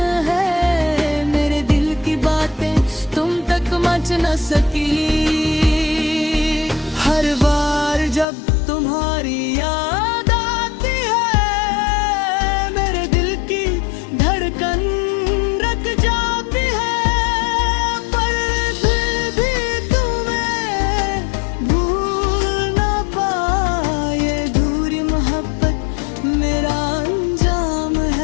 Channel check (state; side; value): drops out; right; at 8.2 s